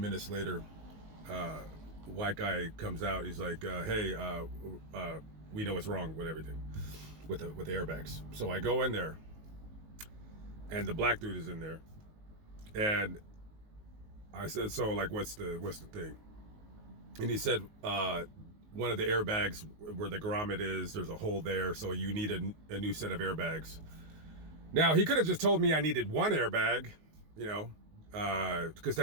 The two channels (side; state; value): left; late; 19 ms